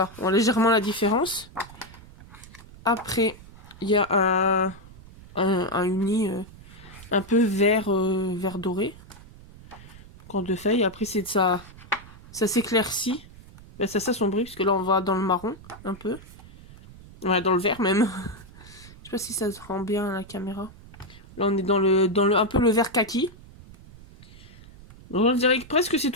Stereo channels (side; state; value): right; noise; rumble, 20 dB below the sound